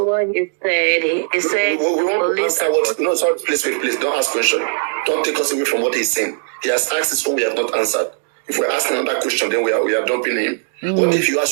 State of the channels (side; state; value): left; silent; 66 dB below the other